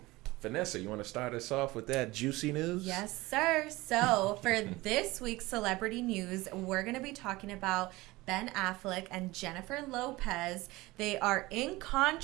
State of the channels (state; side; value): quieter; left; 20.4 dB